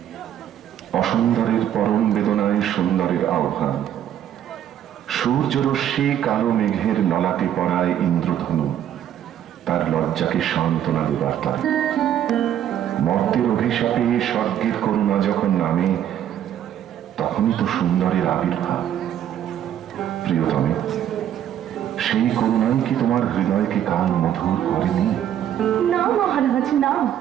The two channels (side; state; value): left; quieter; 10.5 dB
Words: অসুন্দরের পরম বেদনায় সুন্দরের আহ্বান। সূর্যরশ্মি কালো মেঘের ললাটে পড়ায় ইন্দ্রধনু তার লজ্জাকে সান্ত্বনা দেবার তার। মর্তের অভিশাপে স্বর্গের করুণা যখন নামে, তখনই তো সুন্দরের আবির্ভাব। প্রিয়তমে, সেই করুণাই কি তোমার হৃদয়কে কাল মধুর করেনি? না মহারাজ, না।